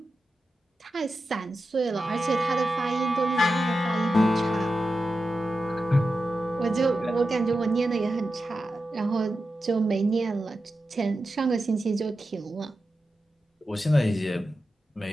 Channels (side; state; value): both; normal; correlation 0.91